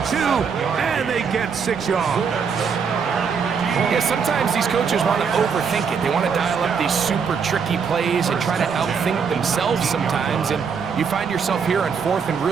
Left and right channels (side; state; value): left; quieter; 6.2 dB